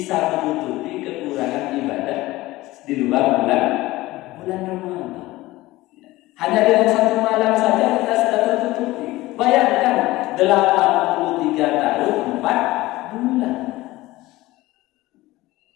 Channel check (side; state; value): right; quieter; 18.4 dB